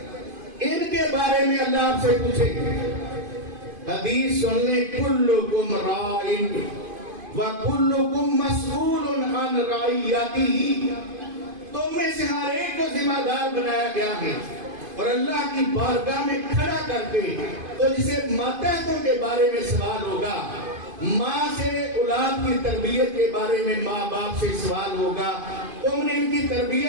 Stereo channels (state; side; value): late; left; 2.5 ms